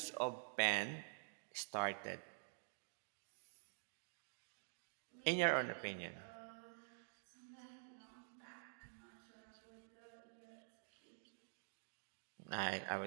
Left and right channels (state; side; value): silent; left; digital silence